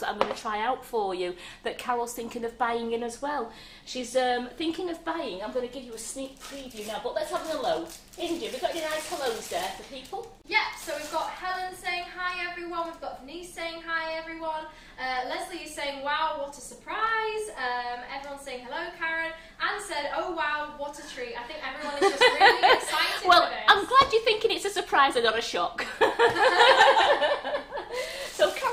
that I'm going to try out for you that Carol's thinking of buying in as well. She's thinking of buying. I'm going to give you a sneak preview now, but let's have a hello. Indra, we've got any nice hellos there for people? Yeah, so we've got Helen saying hi everyone, we've got Denise saying hi everyone, Leslie is saying wow, what a surprise, everyone's saying hello Karen, Anne said oh wow, what a treat. I think everyone is just really excited well, for this. I'm glad you're thinking it's a surprise and not a shock. So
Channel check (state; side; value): identical; both; correlation 1.00